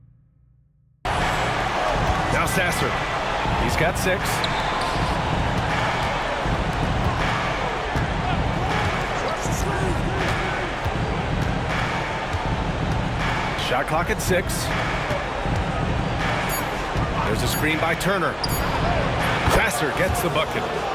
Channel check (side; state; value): both; identical; correlation 1.00